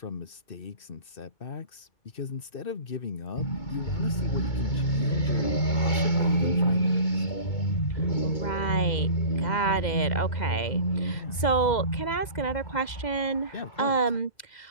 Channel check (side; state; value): right; late; 2.0 ms